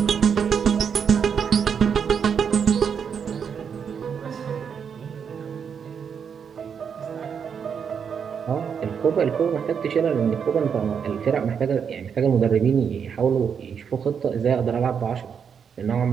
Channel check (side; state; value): left; quieter; 7.0 dB